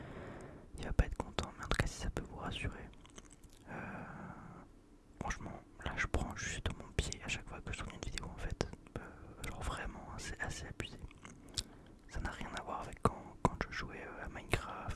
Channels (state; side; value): identical; both; correlation 1.00